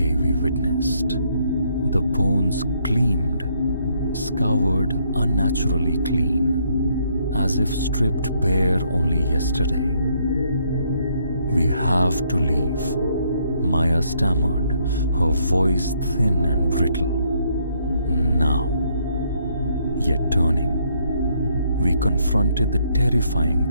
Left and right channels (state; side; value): inverted; both; correlation -0.71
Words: we witnessed. The bones gleamed, scoured unnaturally clean, as if stripped bare only yesterday. We have to leave, Maya stammered, her voice thin and brittle. Now. Yet turning, we confronted the terrifying